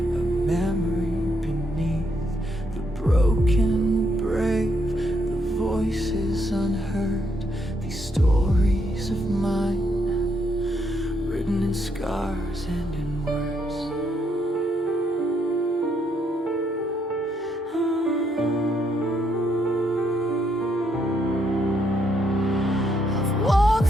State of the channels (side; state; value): both; normal; correlation 0.75